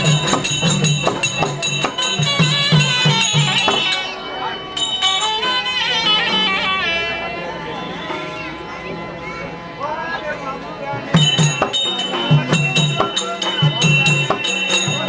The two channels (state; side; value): identical; both; correlation 1.00